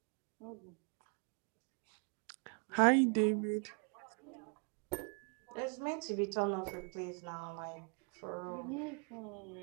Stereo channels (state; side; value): quieter; left; 39.1 dB